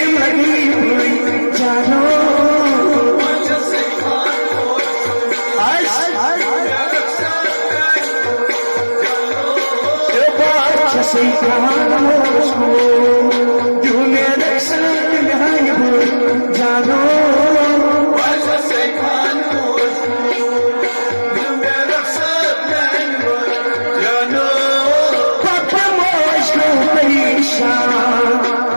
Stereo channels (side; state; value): both; inverted; correlation -1.00